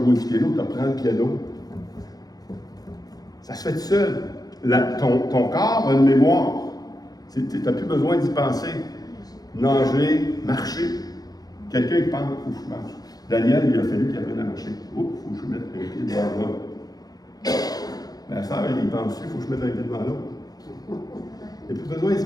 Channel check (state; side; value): late; right; 0.19 ms